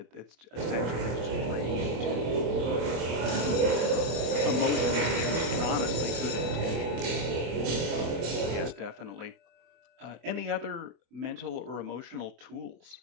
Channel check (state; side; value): late; left; 25 ms